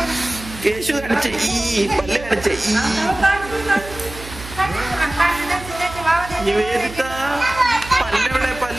കേശു കാണിച്ച ഈ പല്ല് കാണിച്ച നിവേദിത പല്ലെവിടെ?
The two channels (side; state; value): right; noise; hum, 14 dB below the sound